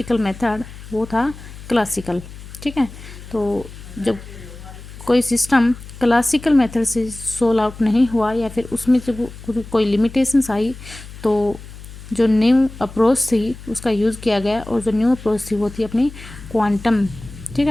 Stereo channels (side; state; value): left; noise; hum, 15 dB below the sound